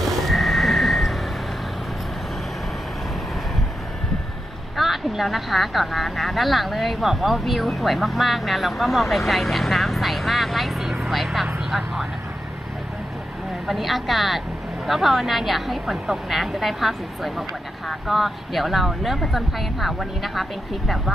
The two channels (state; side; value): normal; both; correlation 0.87